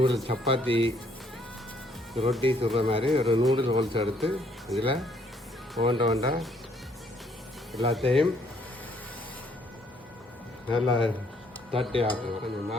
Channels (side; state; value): both; normal; correlation 0.66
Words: சப்பாத்தி ரொட்டி சுடுற மாதிரி ஒரு நூடுல் ஹோல்ஸ் எடுத்து இதில் ஒண்டா எல்லாத்தையும் நல்லா தட்டி ஆக்குங்க. கொஞ்சம்